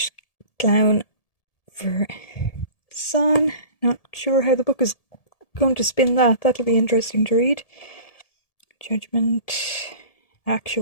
clown for sun. Not sure how the book is going to spin that. That'll be interesting to read. Judgment.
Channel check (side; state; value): right; late; 1.7 ms